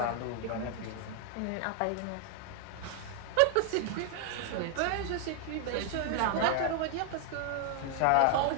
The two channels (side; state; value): both; different; correlation 0.00